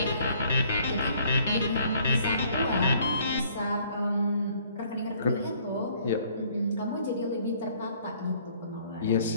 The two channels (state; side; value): inverted; both; correlation -0.61